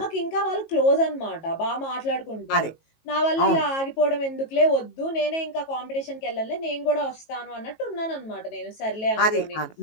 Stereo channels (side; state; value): right; late; 18 ms